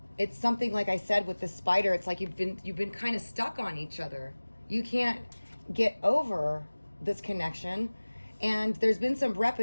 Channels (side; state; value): both; inverted; correlation -1.00